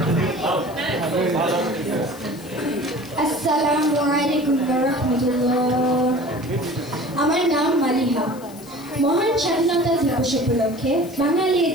আসসালামু আলাইকুম ওয়া রাহমাতুল্লাহ। আমার নাম মালিহা। মহান স্বাধীনতা দিবস উপলক্ষে বাঙালি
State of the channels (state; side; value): noise; left; hiss, 21 dB below the sound